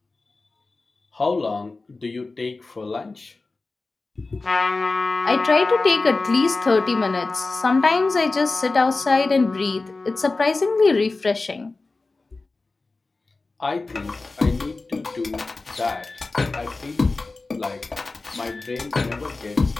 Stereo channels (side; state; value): right; quieter; 3.6 dB